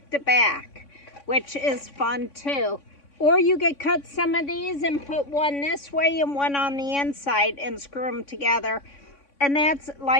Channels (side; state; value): right; late; 3.6 ms